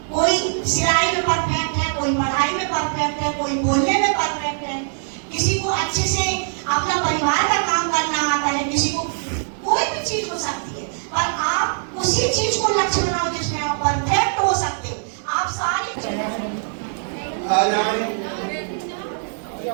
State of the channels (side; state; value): left; silent; digital silence